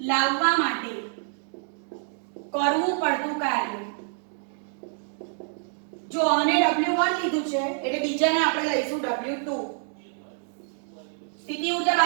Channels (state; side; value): silent; left; 58 dB below the other